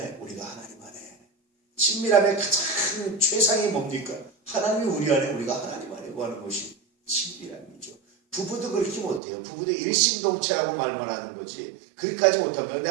우리가 하나님 안에 친밀함의 가장 최상이 뭡니까? 하나님이 우리 안에 우리가 하나님 안에 구하는 것이 친밀함이죠. 부부도 그렇게 못해요. 부부도 일심동체라고 말만 하는 거지 그렇게까지 못합니다. 근데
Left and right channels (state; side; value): drops out; left; at 9.2 s